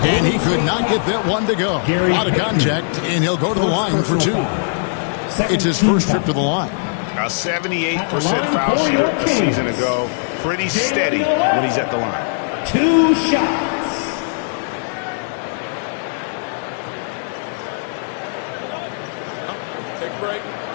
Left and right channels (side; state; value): right; silent; digital silence